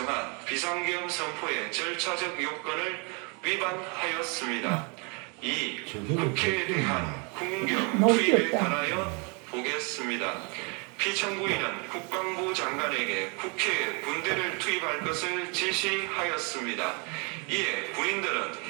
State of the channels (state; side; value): quieter; left; 33.2 dB